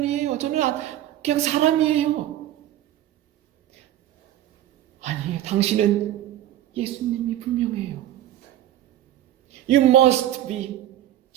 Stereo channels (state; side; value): quieter; left; 12.8 dB